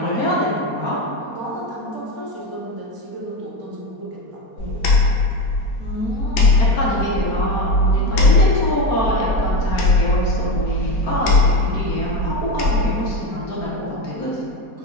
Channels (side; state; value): right; late; 4.2 ms